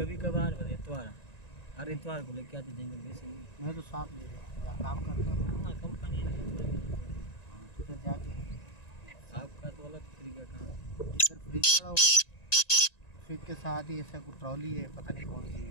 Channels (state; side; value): late; right; 1.9 ms